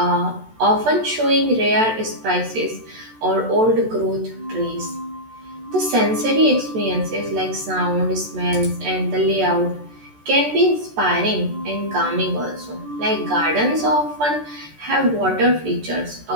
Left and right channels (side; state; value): left; late; 14 ms